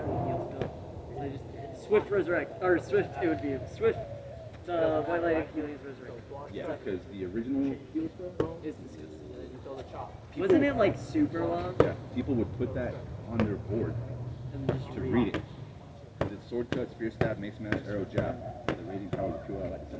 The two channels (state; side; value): identical; both; correlation 1.00